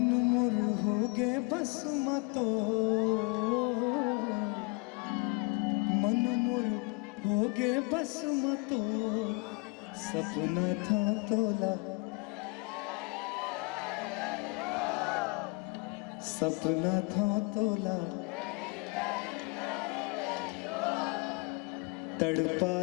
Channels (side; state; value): right; quieter; 30.2 dB